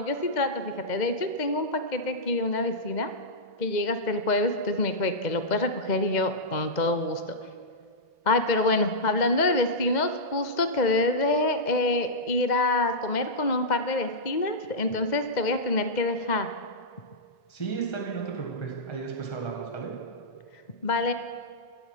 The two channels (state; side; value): late; right; 2.0 ms